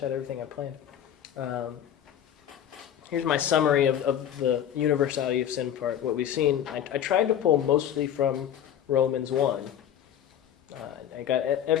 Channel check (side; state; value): right; quieter; 10.1 dB